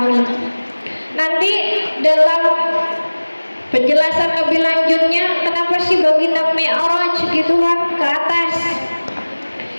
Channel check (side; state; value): both; inverted; correlation -1.00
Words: Nanti dalam penjelasan lebih lanjutnya kenapa sih baginda Mi'raj gitu kan ke atas.